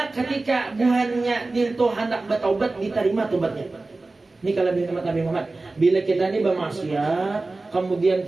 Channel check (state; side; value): quieter; left; 3.3 dB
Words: ketika buhannya dintu hendak bertaubat diterima tobatnya. Ini kelebihan umat Nabi Muhammad. Bila kita ini bermaksiat, kemudian